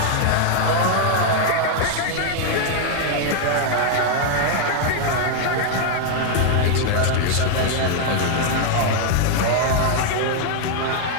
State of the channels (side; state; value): both; different; correlation 0.00